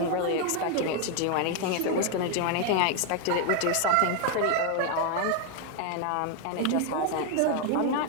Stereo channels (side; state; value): both; different; correlation 0.01